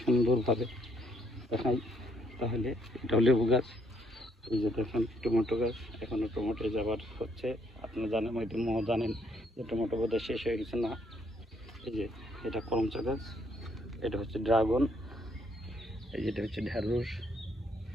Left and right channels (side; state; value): both; normal; correlation 0.70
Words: দেখাই। তাহলে এটাও লেবু গাছ। এই যে দেখেন টমেটো গাছ, এখনও টমেটো যাবার হচ্ছে। আপনারা জানেন, হয়তো জানেন যে টমেটো বোধহয় শেষ হয়ে গেছে না। এই যে এটা করমচা গাছ, এটা হচ্ছে ড্রাগন, এই যেটা হচ্ছে ঢ্যাঁড়স।